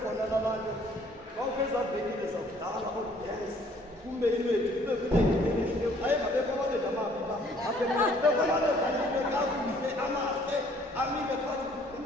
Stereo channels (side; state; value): both; normal; correlation 0.59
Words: laa nto kwakho ezaa venkile zakudala oodansi kume inwethu kube kunengileyo ayengabekho amadoda amabi pha abekho amadoda kakuhle amahle amile phakathi